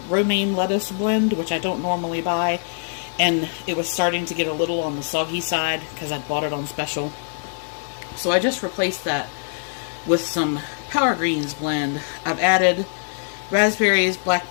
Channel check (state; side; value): silent; right; 63 dB below the other